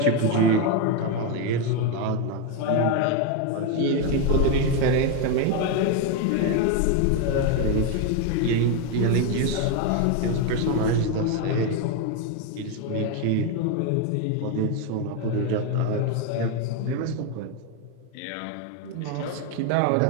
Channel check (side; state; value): both; different; correlation 0.02